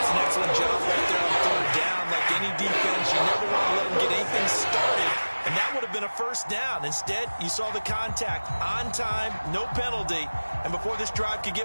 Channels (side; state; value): both; inverted; correlation -1.00